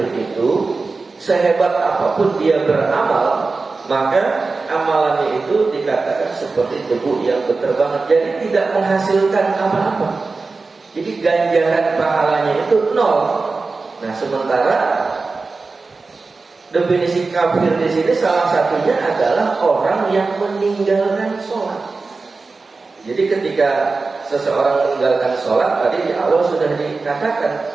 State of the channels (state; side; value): quieter; left; 4.0 dB